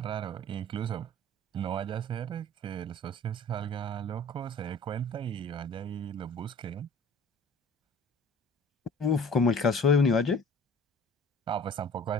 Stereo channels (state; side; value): normal; both; correlation 0.46